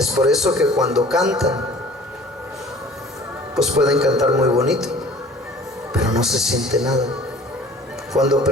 por eso que cuando cantan, pues pueden cantar muy bonito, pero no se siente nada. Cuando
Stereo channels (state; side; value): normal; both; correlation 0.47